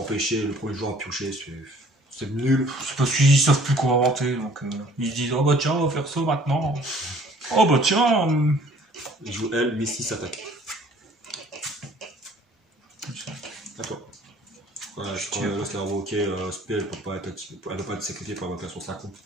le premier joueur à piocher, c'est nul. C'est parce qu'ils savent plus quoi inventer, donc ils se disent oh bah tiens on va faire ça maintenant. Oh bah tiens. Il joue elle, mais 6 attaques. À toi. Voilà, je crois que là, c'est invoqué spell, elle ne peut pas être sécurité pour invocation 50. Elle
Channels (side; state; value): both; normal; correlation 0.55